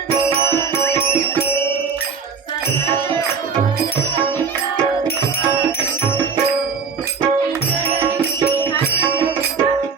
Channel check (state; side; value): quieter; left; 5.7 dB